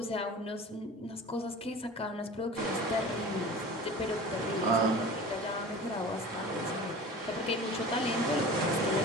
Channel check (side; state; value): both; normal; correlation 0.38